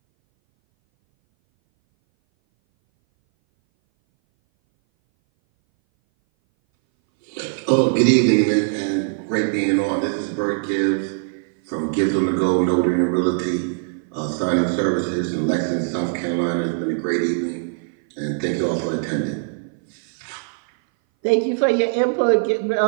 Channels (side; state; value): left; silent; 59 dB below the other